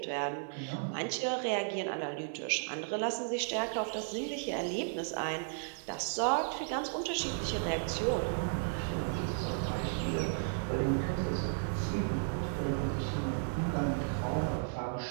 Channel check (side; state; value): left; silent; digital silence